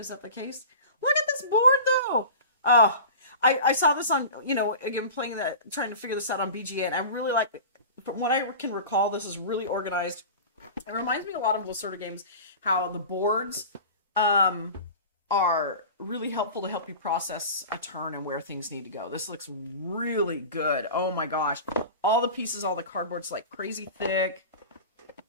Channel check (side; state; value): both; inverted; correlation -0.35